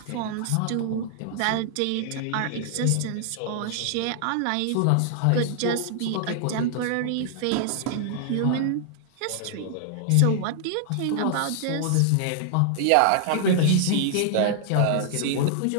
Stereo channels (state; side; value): different; both; correlation -0.01